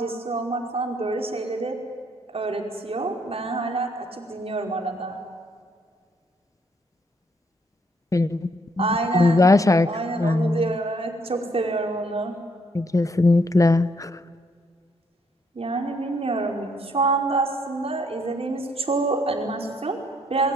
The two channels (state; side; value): normal; both; correlation 0.70